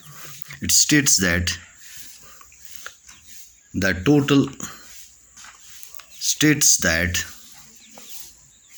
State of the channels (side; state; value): both; identical; correlation 1.00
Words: that the total states that